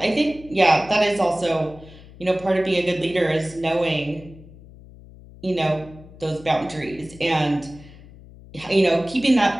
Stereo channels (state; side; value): noise; left; hum, 20 dB below the sound